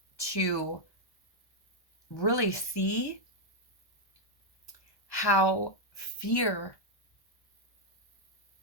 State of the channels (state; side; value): late; right; 1.1 ms